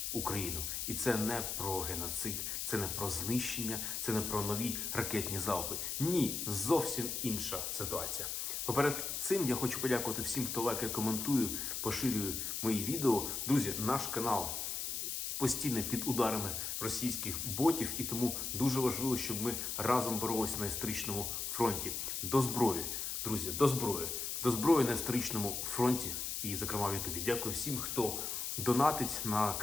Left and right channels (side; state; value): left; noise; hiss, 3 dB below the sound